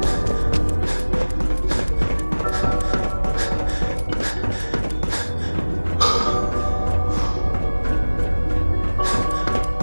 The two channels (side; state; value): both; inverted; correlation -1.00